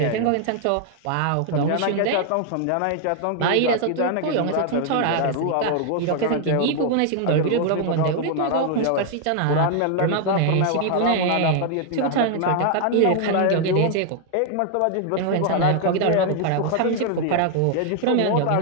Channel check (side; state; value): both; different; correlation 0.00